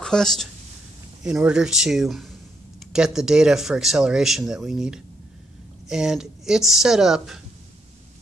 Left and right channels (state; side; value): normal; both; correlation 0.76